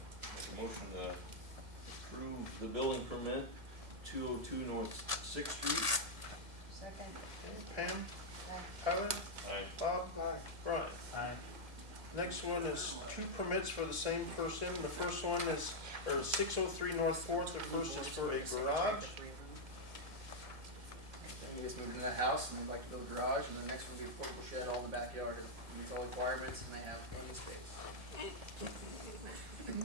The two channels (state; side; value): late; left; 1.9 ms